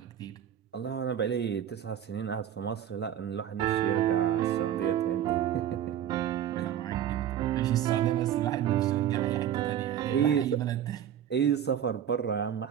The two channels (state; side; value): quieter; left; 10.3 dB